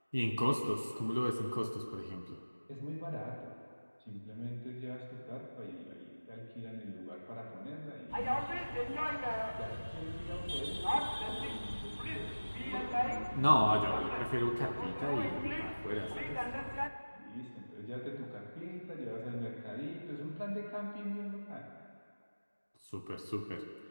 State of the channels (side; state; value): both; inverted; correlation -1.00